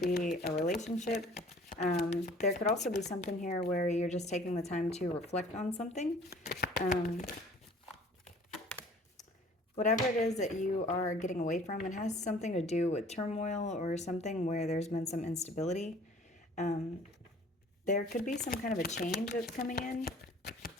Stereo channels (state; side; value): normal; both; correlation 0.51